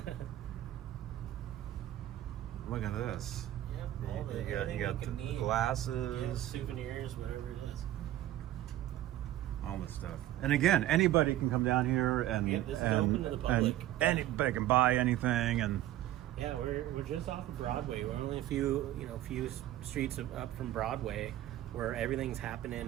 Look at this. You got the glasses. Souvenirs, whatever it is. All this stuff. And again, anybody can come down here and This is open to the public. And anybody can buy anything. And Yeah, we're just off of Broadway. We're only a few streets up from Broadway, where everything's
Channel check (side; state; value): left; quieter; 13.9 dB